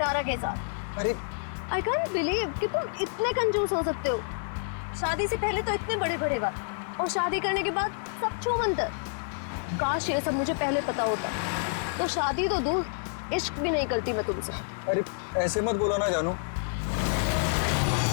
के साथ। अरे आई कांट बिलीव कि तुम इतने कंजूस हो सकते हो। शादी से पहले तो इतने बड़े बड़े बात, और शादी करने के बाद सब छूमंतर। काश ये सब मुझे पहले पता होता, तो शादी तो दूर, इश्क भी नहीं करती मैं तुमसे। अरे ऐसे मत बोलो ना जानू।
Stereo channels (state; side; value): silent; right; digital silence